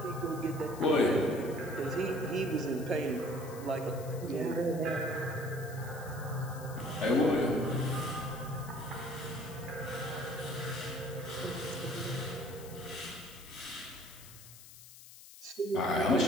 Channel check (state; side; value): noise; left; hiss, 17 dB below the sound